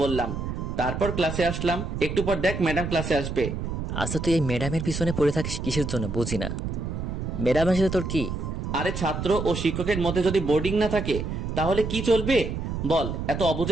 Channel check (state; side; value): noise; right; rumble, 4 dB below the sound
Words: বললাম, তারপর ক্লাসে আসলাম। একটু পর দেখ ম্যাডাম ক্লাসে আসবে। আচ্ছা, তুই এই ম্যাডামের পিছনে পড়ে থাকিস কিসের জন্য বুঝি না। ম্যাডামের সাথে তোর কি? আরে ছাত্র ও শিক্ষকের মধ্যে যদি বোর্ডিং না থাকে তাহলে কি চলবে বল? এত